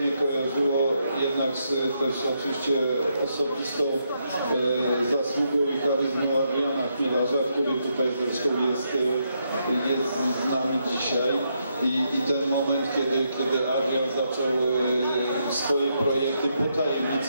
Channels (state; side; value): inverted; both; correlation -0.79